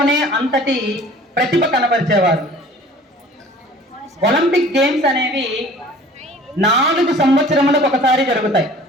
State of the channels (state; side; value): normal; both; correlation 0.48